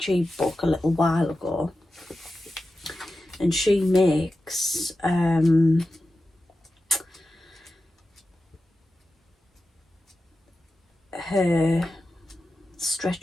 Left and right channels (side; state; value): both; normal; correlation 0.92